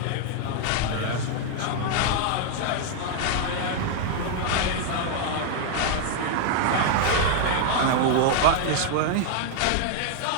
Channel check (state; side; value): different; both; correlation 0.00